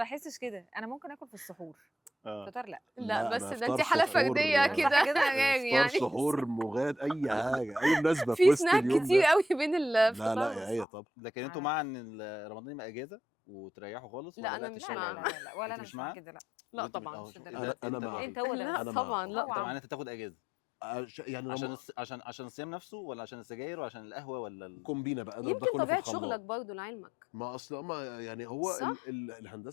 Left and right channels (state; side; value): drops out; right; at 10.9 s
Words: بحسش كده، انا ممكن اكل في السحور. فطار لا. لا أنا بس ده إفطار انت حاله سحور، فرديه كده كده غير افطار يعني. سحور مغاد اي حاجه اي مناسبه في في وسط سناك اليوم كتير ده. قوي بين لا الفطار لا يا والسحور. ايه طب لكن انتوا مع ان رمضان يبقى اجازه وتريحوا خالص؟ لا، ولا أنا لا مش لا مع. لا لا ولا أنت انا مش مش مع مع؟ كده لا. لا وأنت طبعا. مش أهو، للدرجة. انا أنت مع. انت هو ده لا أنا طبعا مع. لا طبعا طبعا. انت تاخد اجازه يعني عشان الصيام نفسه، ولا عشان السجاير، ولا عشان القهوه، ولا كومبينه بقى اضرب ده يمكن كله في طبيعه الخلاط. شغلك برضه لعلمك. ما اصل ما يعني هو صح؟